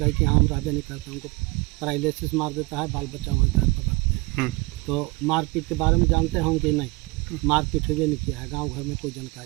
कि हाँ हम रहबे नहीं करते, हमको पैरालिसिस मार देता है, बाल बच्चा वहीं घर पकड़ते हैं। तो मारपीट के बारे में जानते हैं कि नहीं, मारपीट हुए नहीं किया है, गांव घर में कोई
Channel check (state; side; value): quieter; left; 25.7 dB